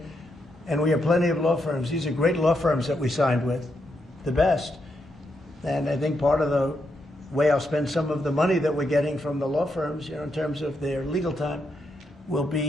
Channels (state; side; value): normal; both; correlation 0.81